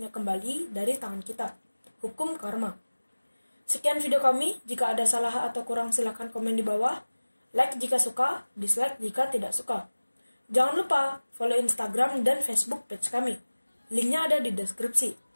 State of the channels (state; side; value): inverted; both; correlation -1.00